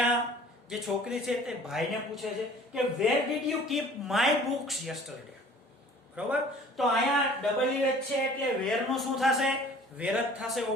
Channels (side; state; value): both; normal; correlation 0.49